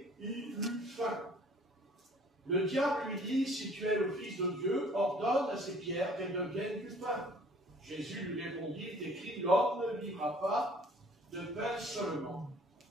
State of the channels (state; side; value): normal; both; correlation 0.54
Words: il eut faim. Le diable lui dit, si tu es le Fils de Dieu, ordonne à ces pierres qu'elles deviennent du pain. Jésus lui répondit, il est écrit, l'homme ne vivra pas de pain seulement.